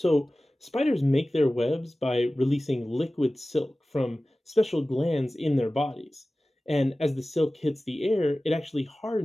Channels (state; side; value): normal; both; correlation 0.96